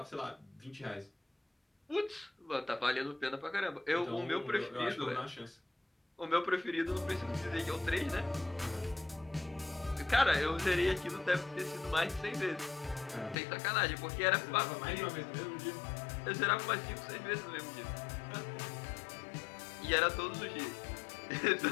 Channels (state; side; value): drops out; right; at 13.4 s